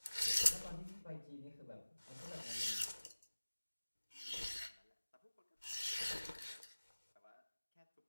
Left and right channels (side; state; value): both; inverted; correlation -1.00